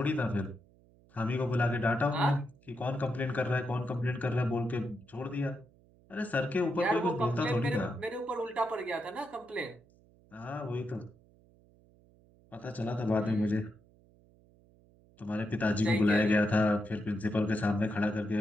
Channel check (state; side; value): noise; right; hum, 29 dB below the sound